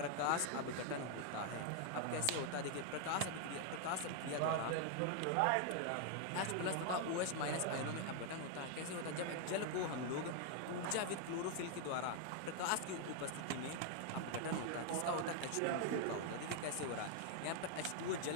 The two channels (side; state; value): both; different; correlation 0.00